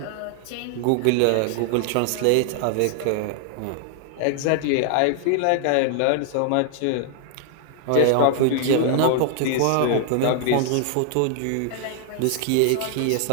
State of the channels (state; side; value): different; both; correlation 0.00